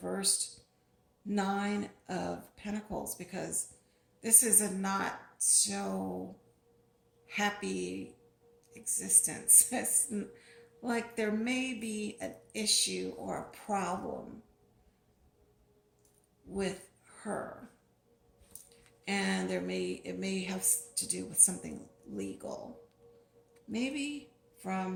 Nine of Pentacles, because this is a not so happy existence. It's like there may be an issue or a problem with her, and it may have to do with something legal, maybe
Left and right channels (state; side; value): identical; both; correlation 1.00